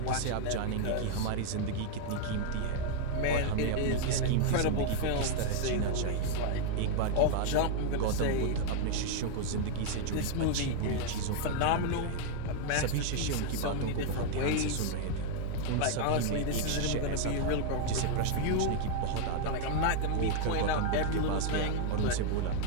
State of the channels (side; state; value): both; different; correlation 0.00